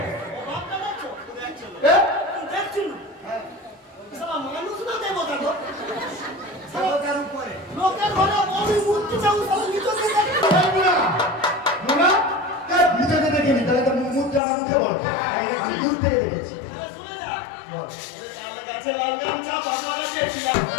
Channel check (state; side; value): drops out; right; at 14.4 s